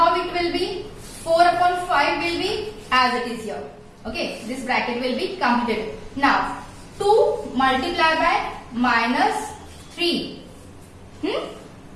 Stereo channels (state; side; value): identical; both; correlation 1.00